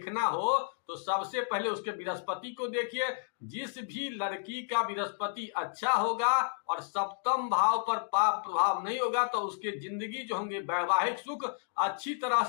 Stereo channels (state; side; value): silent; right; digital silence